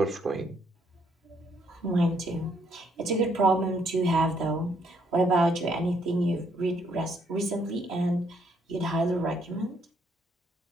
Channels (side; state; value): both; normal; correlation 0.70